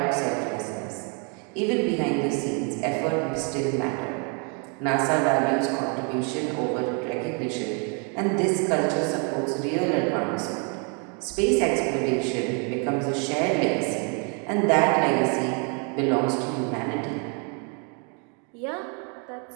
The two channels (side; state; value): left; quieter; 37.0 dB